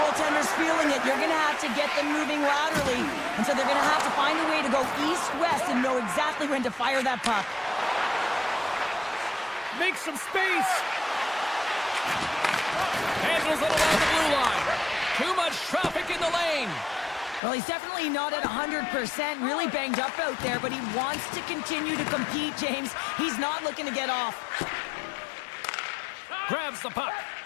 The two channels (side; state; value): right; drops out; at 17.4 s